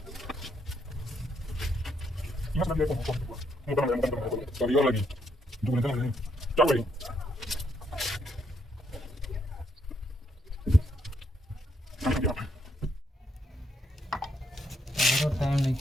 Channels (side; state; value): both; normal; correlation 0.75